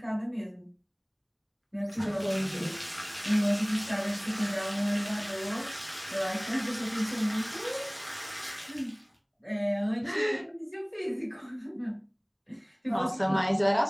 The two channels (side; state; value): both; identical; correlation 1.00